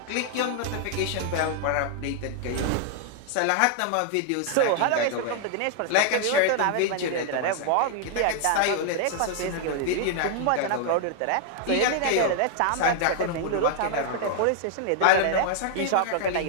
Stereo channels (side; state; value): both; different; correlation 0.00